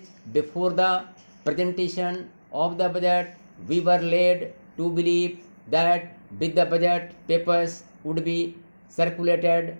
before the presentation of the budget, we were led to believe that with the budget papers would be circulated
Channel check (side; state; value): both; inverted; correlation -1.00